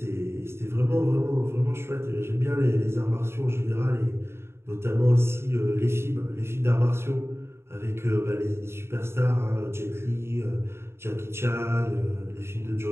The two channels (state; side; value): late; left; 0.12 ms